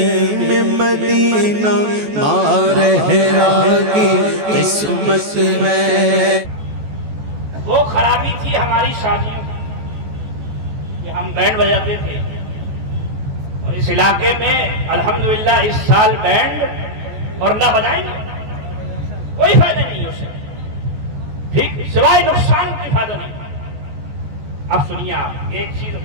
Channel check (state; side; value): late; left; 14 ms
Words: مدینہ مارہرا کی قسمت ہے۔ وہ خرابی تھی ہماری شادیوں کہ ہم بینڈ بجاتے تھے، اور اس علاقے میں الحمدللہ اس سال بینڈ اور نہ بجائیں گے کوئی فائدہ نہیں ہے اسے، ٹھیک سوائے نقصان کوئی فائدہ نہیں۔ اب سنیے آپ، ایک چیز